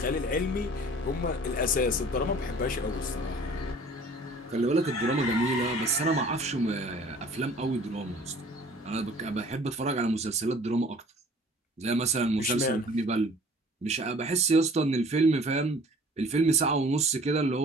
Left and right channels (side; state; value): both; normal; correlation 0.50